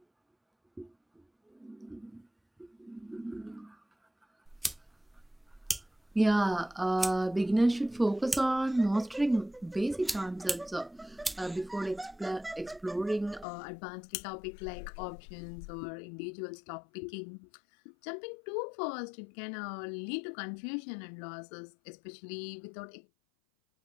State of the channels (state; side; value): drops out; right; at 13.5 s